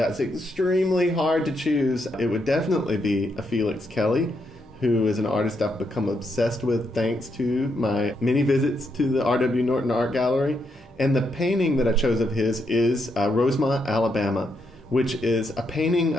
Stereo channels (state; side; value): normal; both; correlation 0.79